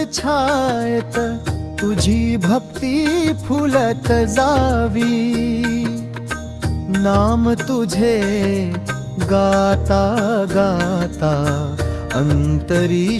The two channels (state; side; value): identical; both; correlation 1.00